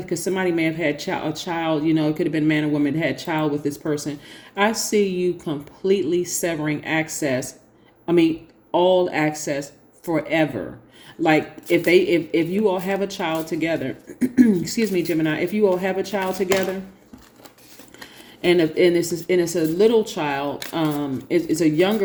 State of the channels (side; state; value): both; identical; correlation 1.00